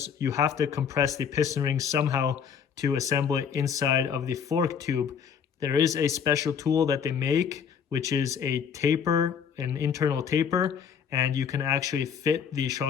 you have to compress the piston ring somehow to assemble it inside of the fork tube. There is a special tool that they make, which is a taper, an internal taper, and you can actually fit the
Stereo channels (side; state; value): right; quieter; 7.3 dB